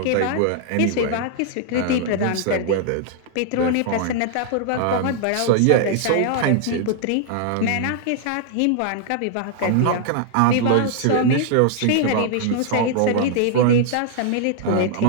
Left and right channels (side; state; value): both; different; correlation -0.01